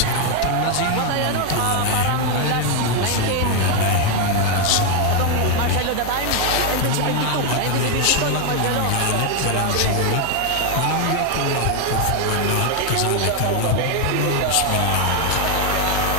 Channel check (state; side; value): different; both; correlation 0.01